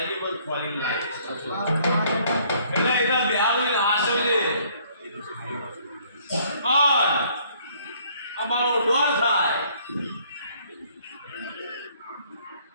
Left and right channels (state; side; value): inverted; both; correlation -0.62